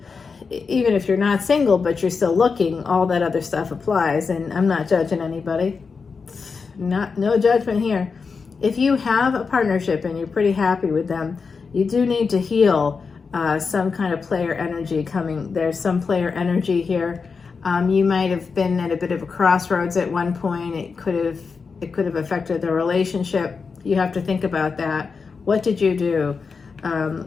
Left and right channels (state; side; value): quieter; right; 5.1 dB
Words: you're not single, but you're still looking, all that other stuff applies. And I'm not judging anybody. No judgment here. If you have a partnership and you're pretty happy with them, you do need to heal some kind of player energy coming. There's some player energy here. You might have been at a bit of a crossroads at one point. It could have affected the relationship. You have to think about that. What did you do,